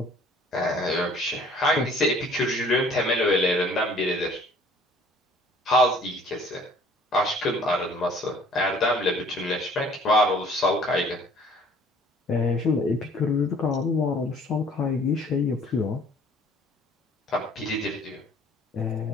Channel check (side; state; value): both; normal; correlation 0.55